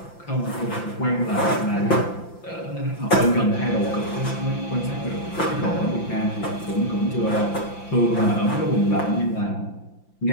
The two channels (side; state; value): right; late; 5.9 ms